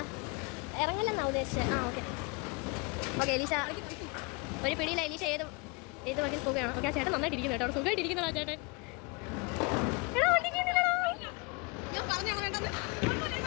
ഇറങ്ങില്ലെന്നാ ഉദ്ദേശിച്ചത്. ആ ഓക്കെ ഓക്കെ എലീഷ ഒരു പിടിയില്ല. എലീഷ ഏത് വകയിൽ പോവുകയാണ്. ഓക്കെ ആ ചേട്ടൻ നന്നായിട്ട് ഇരിക്കുന്നു കേട്ടോ. അവിടെ സുഖമായിട്ട് ഇരിക്കുന്നതാ ചേട്ടൻ.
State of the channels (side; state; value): right; quieter; 29.7 dB